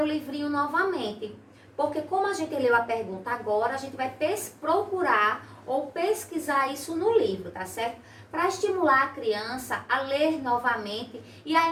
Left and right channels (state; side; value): identical; both; correlation 1.00